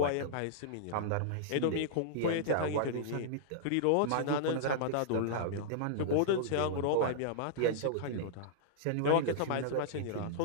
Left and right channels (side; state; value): both; different; correlation -0.01